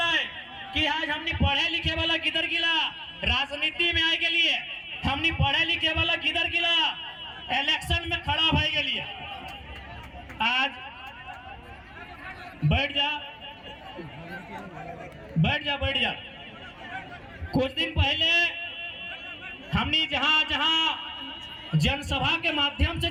है कि आज हमने पढ़े लिखे वाला किधर गिला, राजनीति में आए के लिए हमने पढ़े लिखे वाला किधर गिला, इलेक्शन में खड़ा भाई के लिए। आज बैठ जा बैठ जा बैठ जा। कुछ दिन पहले हमने जहां जहां जनसभा के माध्यम से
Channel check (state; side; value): identical; both; correlation 1.00